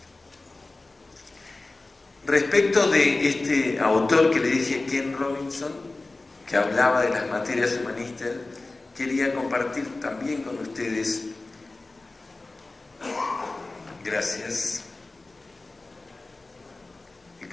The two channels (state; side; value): quieter; right; 3.2 dB